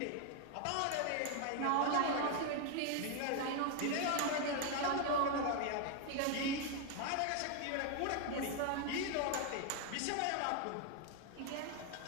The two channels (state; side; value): different; both; correlation 0.01